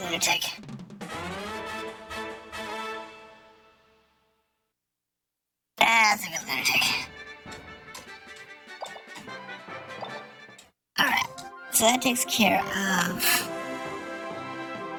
lunatic. That's a good lunatic. Alright, so that takes care of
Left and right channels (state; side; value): identical; both; correlation 1.00